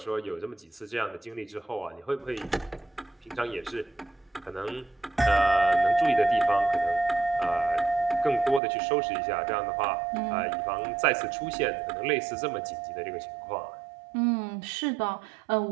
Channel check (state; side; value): drops out; left; at 8.6 s